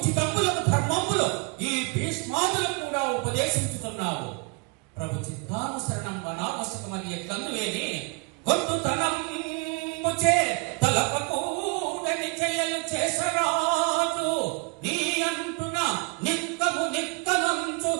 ధర్మములు ఈ భీష్మాదులకు కూడా ఉపదేశించుతున్నావు. ప్రభు చిత్తానుసరణం వనావశ్యకమని ఎట్లందువేని గొంతుతనముచే తలపకూడని చెయ్యలు చేసరాజు, నీ అంటున నిక్కము నిక్కమంచు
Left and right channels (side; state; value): left; quieter; 31.5 dB